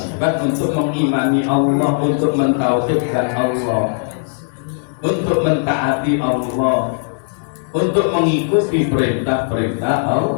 untuk mengimani Allah, untuk mentauhidkan Allah, untuk mentaati Allah, untuk mengikuti perintah-perintah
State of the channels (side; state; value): right; silent; digital silence